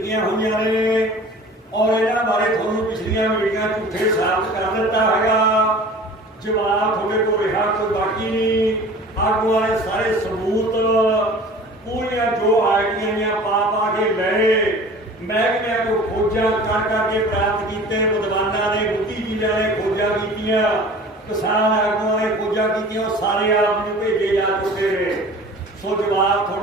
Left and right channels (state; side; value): normal; both; correlation 0.43